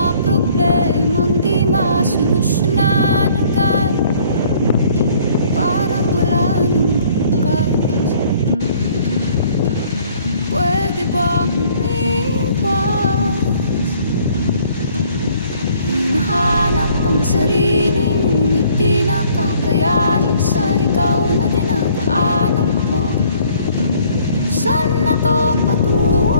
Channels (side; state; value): both; inverted; correlation -0.58